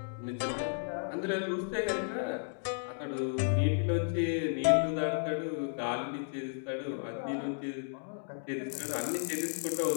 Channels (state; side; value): silent; right; digital silence